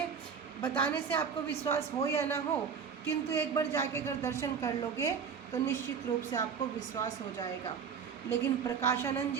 बताने से आपको विश्वास हो या ना हो, किंतु एक बार जाके अगर दर्शन कर लोगे तो निश्चित रूप से आपको विश्वास हो जाएगा। लेकिन प्रकाशानंद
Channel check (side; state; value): left; quieter; 6.6 dB